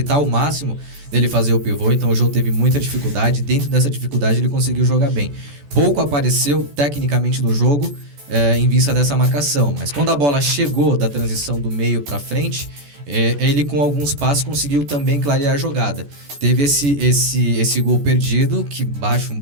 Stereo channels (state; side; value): late; left; 14 ms